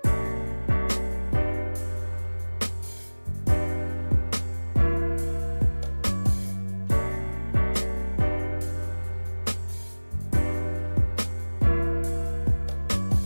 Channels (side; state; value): both; inverted; correlation -1.00